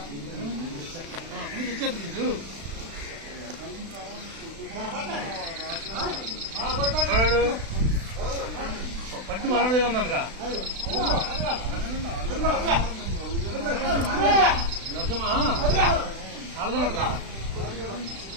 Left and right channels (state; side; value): late; left; 36 ms